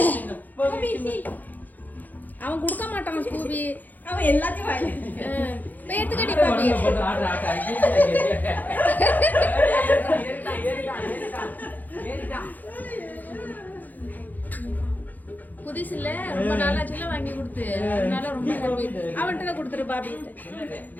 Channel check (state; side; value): late; right; 0.083 ms